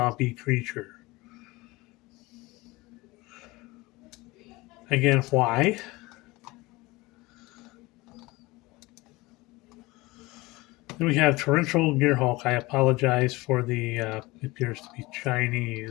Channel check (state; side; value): quieter; right; 21.6 dB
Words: creature. Again, why? Then we have Torrential Gearhulk. I apologize for the, appears to be